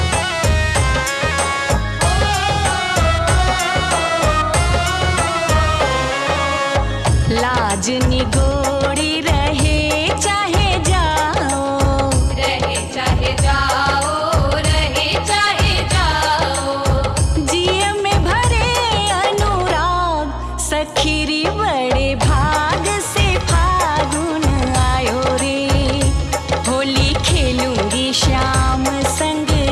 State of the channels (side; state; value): both; identical; correlation 1.00